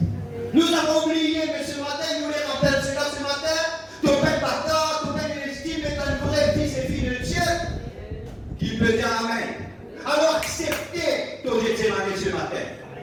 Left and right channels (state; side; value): identical; both; correlation 1.00